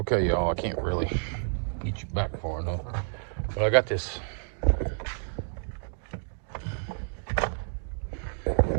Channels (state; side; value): silent; left; 58 dB below the other